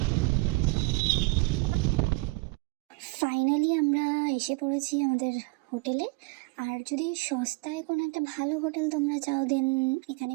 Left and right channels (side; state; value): left; quieter; 26.6 dB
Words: ফাইনালি আমরা এসে পড়েছি আমাদের হোটেলে। আর যদি সস্তায় কোনো একটা ভালো হোটেল তোমরা চাও, দেন এখানে